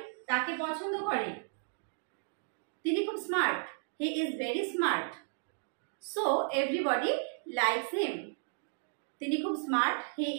তাকে পছন্দ করে, তিনি খুব smart, he is very smart, so everybody likes him, তিনি খুব smart, he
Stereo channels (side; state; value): left; silent; digital silence